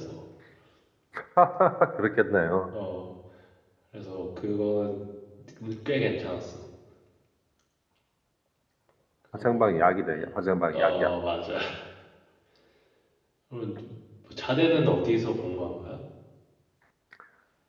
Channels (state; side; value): identical; both; correlation 1.00